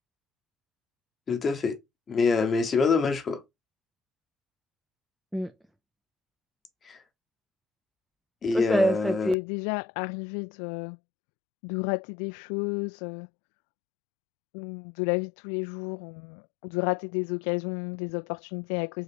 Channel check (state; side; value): drops out; right; at 9.3 s